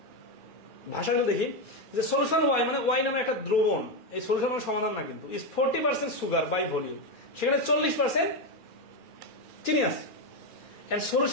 ভাষাগুলো দেখি, যে solution Y মানে Y নামে একটা দ্রবণ, এই solution মানে সমাধান না কিন্তু, is 40% সুগার বাই ভলিউম, সেখানে 40% চিনি আছে। and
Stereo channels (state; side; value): late; right; 2.4 ms